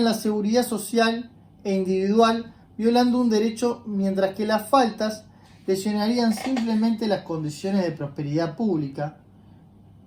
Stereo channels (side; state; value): both; identical; correlation 1.00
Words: la seguridad social e individual violando un derecho, mientras que las faltas lesionarían simplemente las condiciones de prosperidad pública,